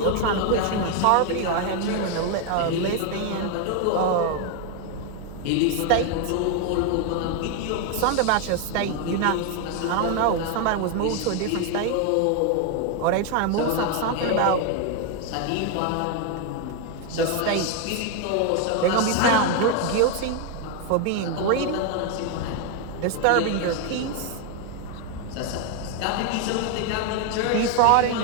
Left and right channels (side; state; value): both; different; correlation 0.01